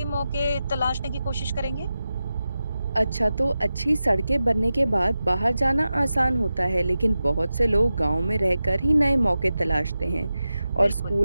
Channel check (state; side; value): inverted; both; correlation -0.92